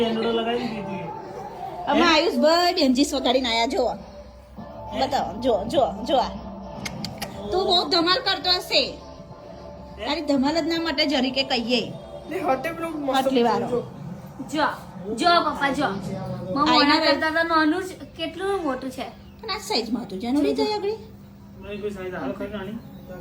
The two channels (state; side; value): identical; both; correlation 1.00